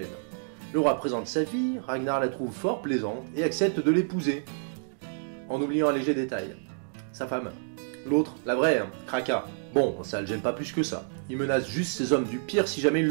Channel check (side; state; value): left; silent; digital silence